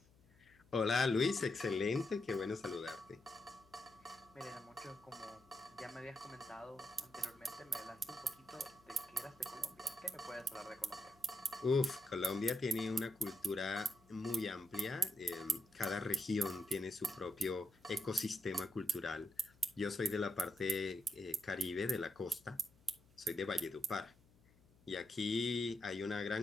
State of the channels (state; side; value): noise; left; hum, 28 dB below the sound